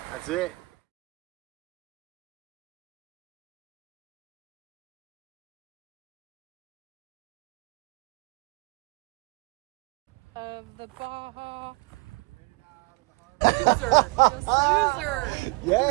that's it. Of the Baja. Loser. Just loser.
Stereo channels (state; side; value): quieter; left; 27.3 dB